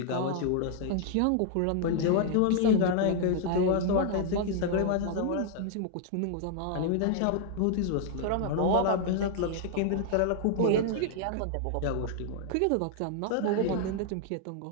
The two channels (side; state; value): both; different; correlation 0.00